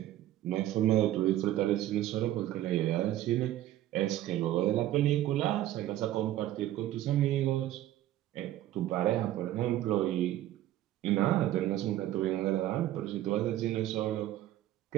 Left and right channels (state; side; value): quieter; left; 13.6 dB